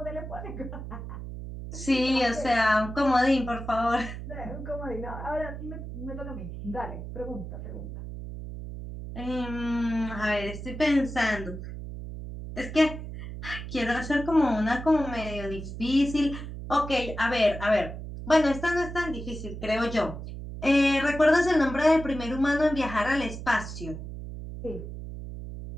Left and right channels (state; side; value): noise; right; hum, 9 dB below the sound